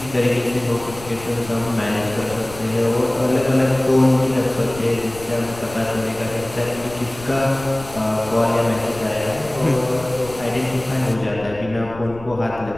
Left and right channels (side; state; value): left; noise; rumble, 16 dB below the sound